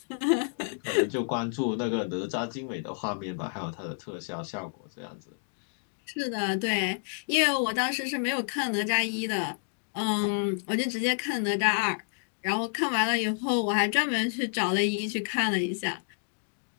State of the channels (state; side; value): silent; right; digital silence